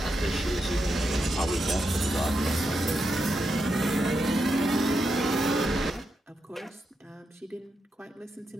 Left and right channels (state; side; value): normal; both; correlation 0.85